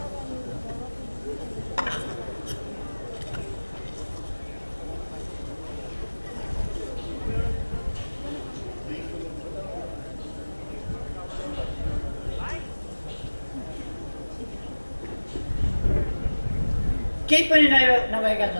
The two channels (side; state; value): both; inverted; correlation -1.00